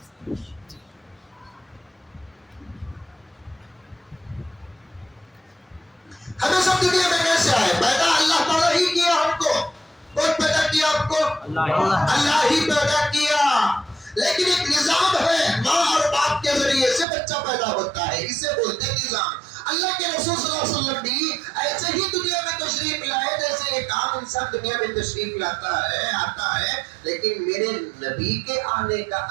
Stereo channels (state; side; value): drops out; left; at 17.1 s